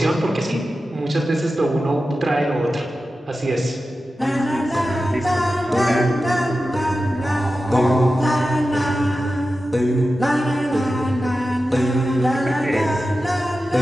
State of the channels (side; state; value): both; normal; correlation 0.93